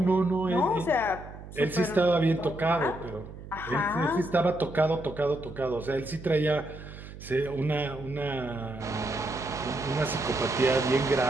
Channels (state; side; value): noise; right; hum, 14 dB below the sound